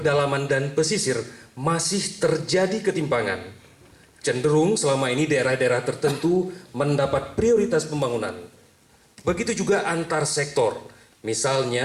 dan pesisir masih terjadi ketimpangan. Cenderung selama ini daerah-daerah tertentu mendapat prioritas pembangunan. Begitu juga antar sektor,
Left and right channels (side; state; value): both; identical; correlation 1.00